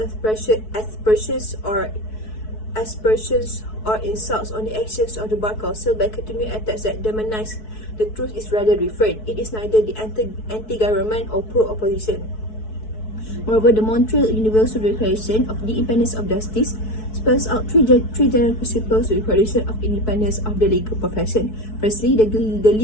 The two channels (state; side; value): late; right; 4.6 ms